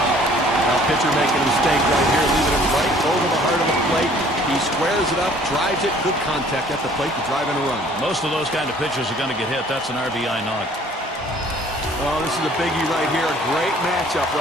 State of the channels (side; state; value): both; normal; correlation 0.56